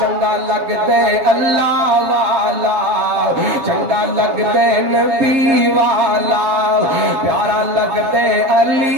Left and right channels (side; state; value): left; late; 7.4 ms